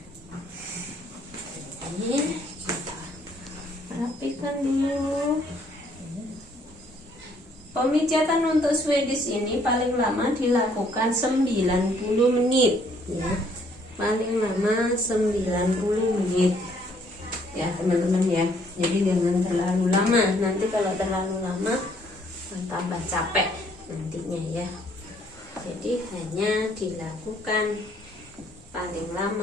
Ini kita rapikan dulu. Pemijatan untuk Swedish ini paling lama dilakukan 90 menit ya. Paling lama 90 menit ya teman-teman ya. Jadi jangan terlalu lama. Nanti kalau terlalu lama tambah capek nantinya ya. Jadi hanya dilakukan paling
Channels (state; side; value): normal; both; correlation 0.65